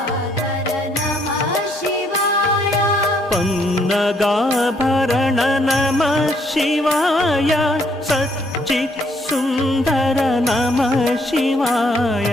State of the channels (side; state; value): both; normal; correlation 0.69